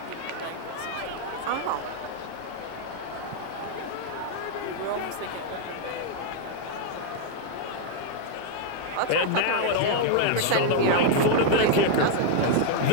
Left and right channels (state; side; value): different; both; correlation 0.00